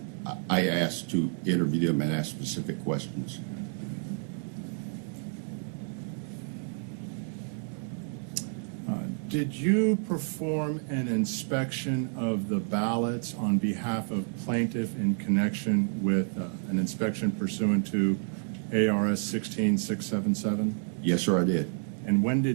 asked to interview them and ask specific questions. Did you perform an inspection of the ballots on behalf of plaintiff in connection with an inspection pursuant to ARS 16677? Yes, sir, I did. And when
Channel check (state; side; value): silent; left; 55 dB below the other